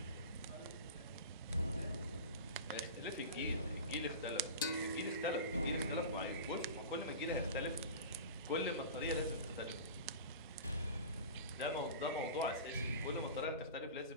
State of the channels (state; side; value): inverted; both; correlation -0.32